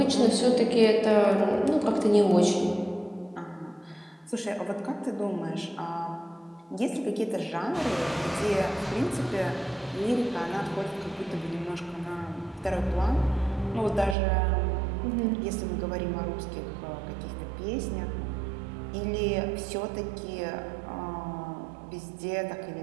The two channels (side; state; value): left; drops out; at 14.2 s